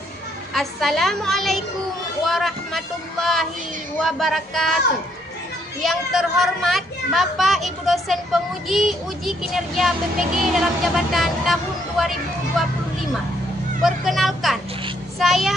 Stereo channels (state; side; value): normal; both; correlation 0.70